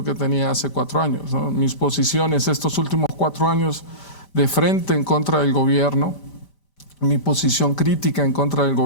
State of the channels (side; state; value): right; late; 4.0 ms